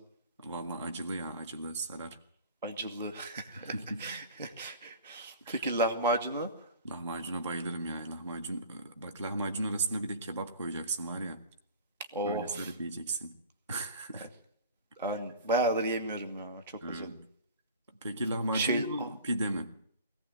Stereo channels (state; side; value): inverted; both; correlation -0.41